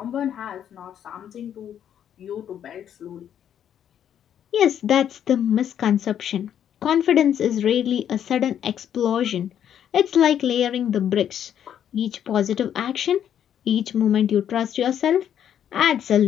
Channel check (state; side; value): quieter; right; 9.6 dB